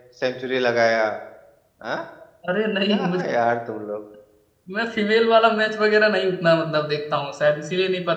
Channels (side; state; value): both; identical; correlation 1.00